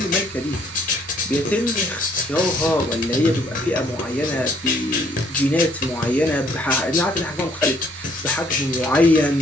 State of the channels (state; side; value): normal; both; correlation 0.64